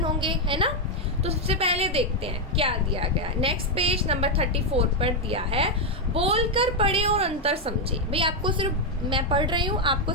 होंगे, है ना। तो सबसे पहले देखते हैं क्या दिया गया। नेक्स्ट पेज नंबर 34 पर दिया है, बोलकर पढ़े और अंतर समझे। भाई आपको सिर्फ मैं पढ़ रही हूँ, आपको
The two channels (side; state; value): both; normal; correlation 0.02